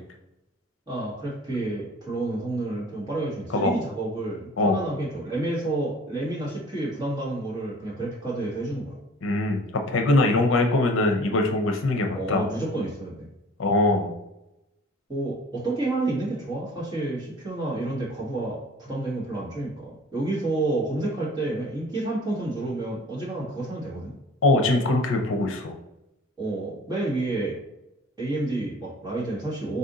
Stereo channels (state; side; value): normal; both; correlation 0.47